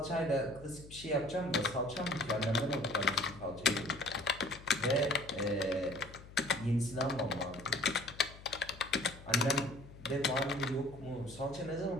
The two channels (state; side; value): noise; left; hum, 17 dB below the sound